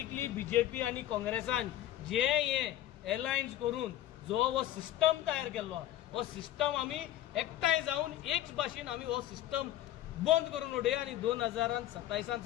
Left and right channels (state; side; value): quieter; right; 13.1 dB